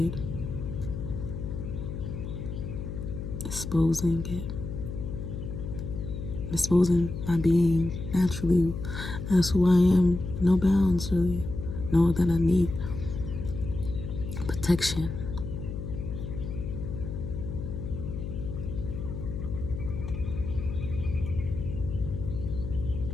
Exposing it. Exposing my being naturally as who I am. No bounds, really. Know that I need protection.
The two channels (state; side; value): noise; left; hum, 6 dB below the sound